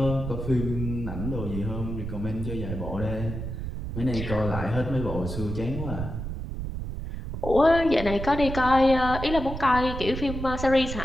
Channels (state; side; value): noise; right; rumble, 6 dB below the sound